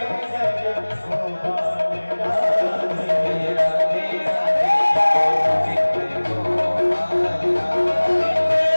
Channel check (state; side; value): inverted; both; correlation -1.00